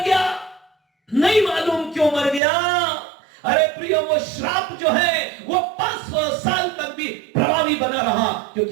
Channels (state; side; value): drops out; left; at 2.4 s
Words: गया? नहीं मालूम क्यों मर गया। अरे प्रियो, वो श्राप जो है वो 500 साल तक भी प्रभावी बना रहा,